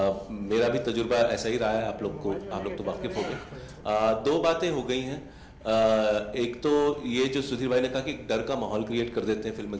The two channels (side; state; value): both; identical; correlation 1.00